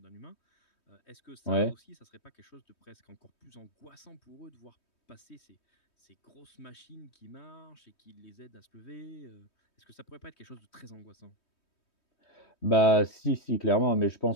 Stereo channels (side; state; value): right; late; 3.2 ms